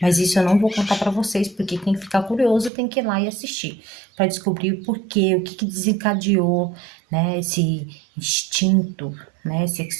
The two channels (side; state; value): left; drops out; at 2.7 s